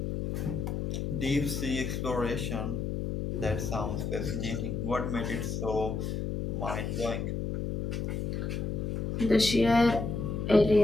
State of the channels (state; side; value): noise; left; hum, 2 dB below the sound